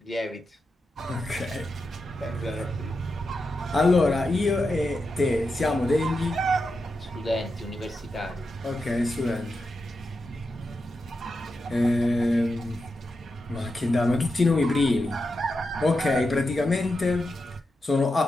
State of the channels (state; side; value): normal; both; correlation 0.88